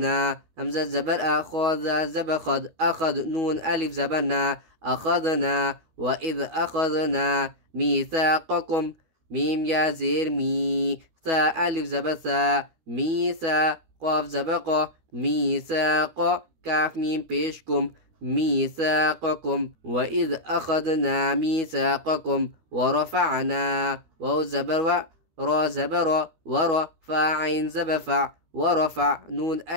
حمزہ زبر أخذ زبر خد أخذ نون ألف زبرنا أخذنا وإذ أخذنا ميثاقكم ميم يا زير مي ثا ألف زبر ثا ميثا قاف زبق ميثاق كاف ميم بيشكم ميثاقكم وإذ أخذنا ميثاقكم ورفعنا واو زبر و را زبر ورفع عين زبفع ورفع نون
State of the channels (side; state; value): left; late; 12 ms